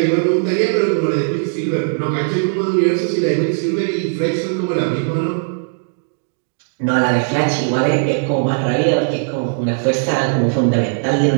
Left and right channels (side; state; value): left; silent; digital silence